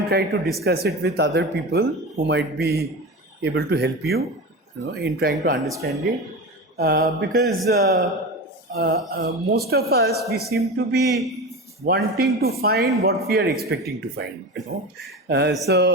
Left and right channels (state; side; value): normal; both; correlation 0.26